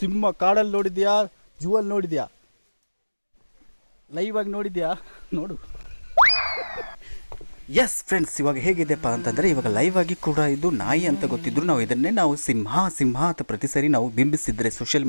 ಸಿಂಹ ಕಾಡಲ್ಲಿ ನೋಡಿದ್ಯಾ, ಜೂವಲ್ಲಿ ನೋಡಿದ್ಯಾ, ಲೈವ್ ಆಗಿ ನೋಡಿದ್ಯಾ? ನೋಡು. ಎಸ್ ಫ್ರೆಂಡ್ಸ್, ಇವಾಗ ಹೇಗಿದೆಪ್ಪ ಅಂತಂದರೆ, ಇವಾಗ ಲೈವ್ ಆಗಿ ಕೂಡ ಇದು ನಾಯಿ ಅಂತ ಗೊತ್ತಿದ್ರು ನಾವು ಇದನ್ನೇ ಸಿಂಹ ಅಂತ ಪ್ರತಿ ಸರಿ ನಾವು ಬಿಂಬಿಸಿದ್ರೆ ಸೋಷಿಯಲ್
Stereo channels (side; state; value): both; inverted; correlation -1.00